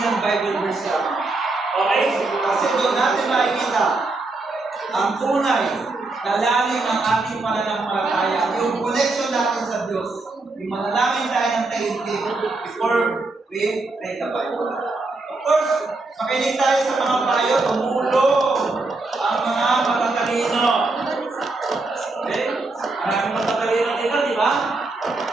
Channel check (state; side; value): quieter; left; 3.3 dB